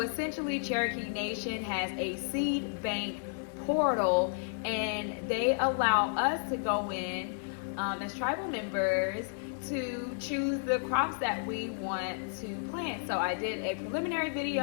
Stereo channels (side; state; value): right; silent; digital silence